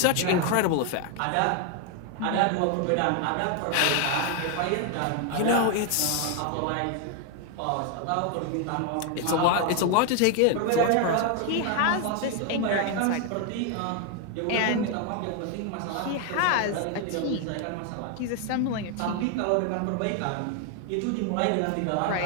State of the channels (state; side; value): different; both; correlation 0.00